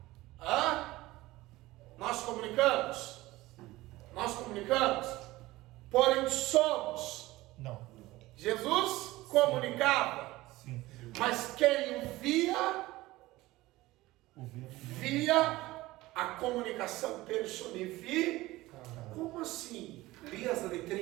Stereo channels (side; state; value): left; quieter; 18.5 dB